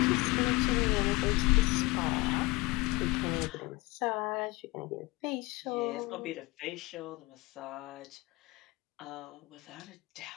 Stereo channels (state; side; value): quieter; right; 22.8 dB